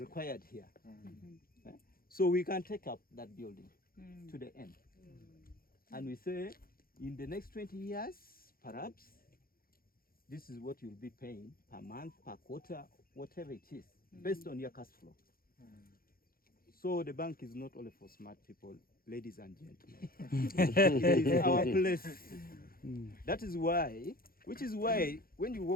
here. So we can take up that building to the end. And we say, in the next 20 years, perhaps, this is what you'll be paying per month, per quarter, whatever it is, based on your cash flow. So the bank is not only for smart people, ladies and gentlemen. It is our place. That is why, which is why when you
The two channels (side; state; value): right; late; 0.43 ms